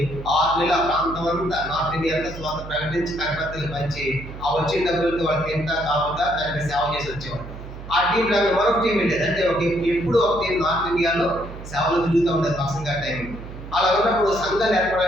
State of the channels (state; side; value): noise; right; hum, 12 dB below the sound